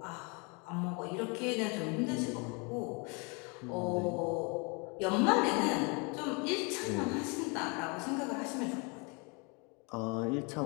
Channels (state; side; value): quieter; right; 31.7 dB